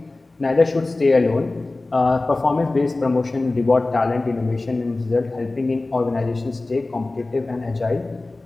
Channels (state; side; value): quieter; right; 3.1 dB